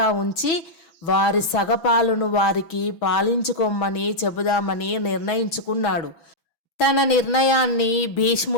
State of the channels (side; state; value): right; late; 6.0 ms